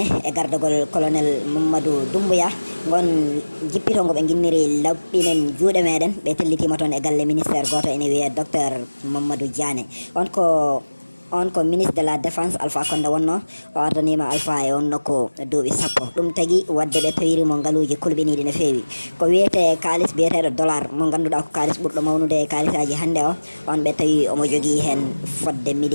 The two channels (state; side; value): inverted; both; correlation -1.00